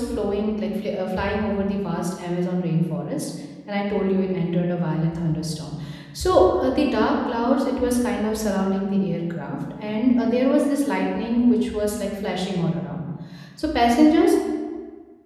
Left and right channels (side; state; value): both; identical; correlation 1.00